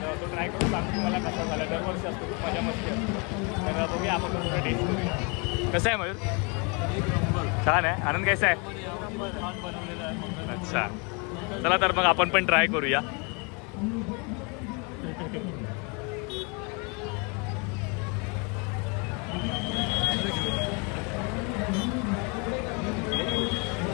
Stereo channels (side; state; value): right; quieter; 32.3 dB